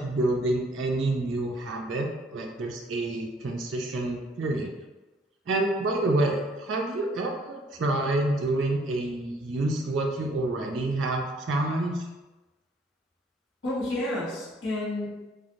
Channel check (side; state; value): both; normal; correlation 0.62